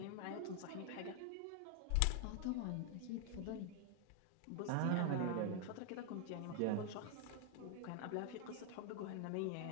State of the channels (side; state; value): both; different; correlation 0.00